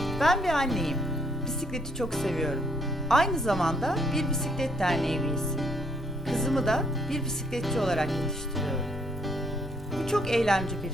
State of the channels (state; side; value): normal; both; correlation 0.69